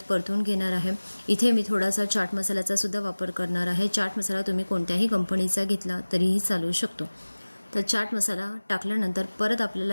परतून घेणार आहे। इथे मी थोडासा चाट मसाल्याचा सुद्धा वापर करणार आहे। चाट मसाला तुम्ही कोणत्याही कंपनीचा घेतला तरीही चालू शकतो। तर चाट मसाला टाकल्यानंतर परत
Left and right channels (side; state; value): both; inverted; correlation -1.00